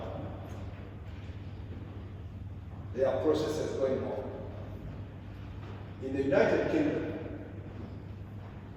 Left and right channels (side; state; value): both; identical; correlation 1.00